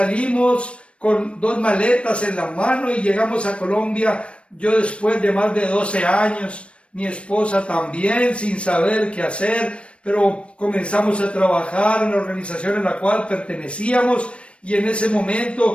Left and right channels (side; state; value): right; late; 0.060 ms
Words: con 2 maletas en la mano y llegamos a Colombia, yo después de más de 12 años, mi esposa también, sin saber qué hacer, pero comenzamos a trabajar en la organización en la cual pertenecíamos, y en ese